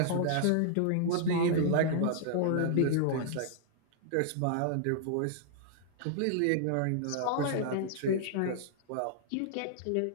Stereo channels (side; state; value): both; different; correlation -0.01